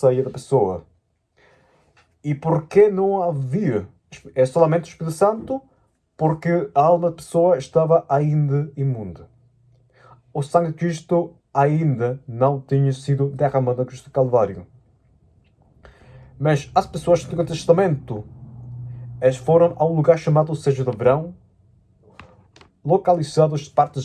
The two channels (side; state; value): both; identical; correlation 1.00